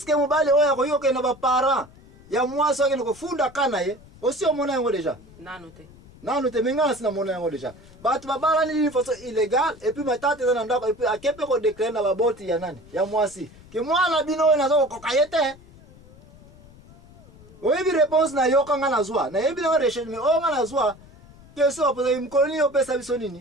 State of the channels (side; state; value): left; noise; rumble, 23 dB below the sound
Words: mobali oyo akoki kokende na baparent ya mwasi oyo akende kofunda ka na ye osi omona yango deja nanu te me ngai nasi namona yango deja bato babalani nini façon illégale epuis matata eza na ndako epuis ake mpe kodeklare na baboti ya nani ya mwasi ke mwana bino oyo naza kokoka ye te oyebi réponse na yo kanga nazwa nayebi nango recherche me oyo nga nazwa question bapozaki mokolo nini opesa biso